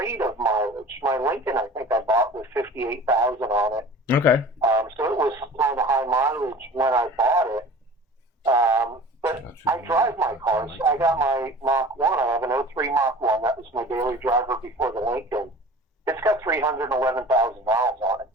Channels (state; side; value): normal; both; correlation 0.40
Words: of mileage. My Lincoln, I think I bought with 58,000 on it. Okay. So it was kind of high mileage when I bought it. But I drive my cars. I got my Mach 1. I have an 03 Mach 1. That was my daily driver before the Lincoln. It's got 311,000 miles on it.